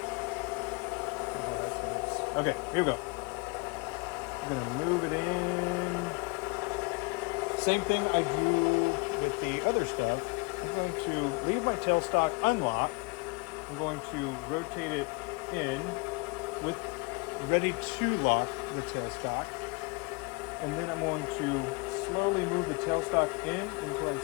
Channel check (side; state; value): right; quieter; 28.9 dB